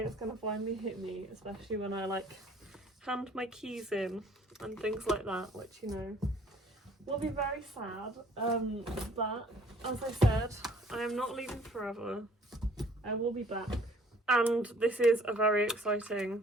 it's going to finally hit me, especially when I like hand my keys in and things like that, which, you know, will be very sad. But as I said, I am not leaving forever. I will be back. And this is a very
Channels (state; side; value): normal; both; correlation 0.57